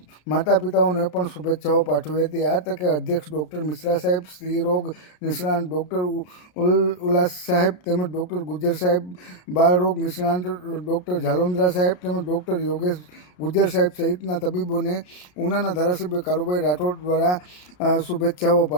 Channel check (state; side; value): late; right; 33 ms